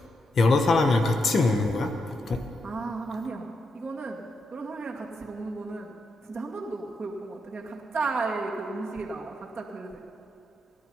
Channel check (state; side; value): normal; both; correlation 0.83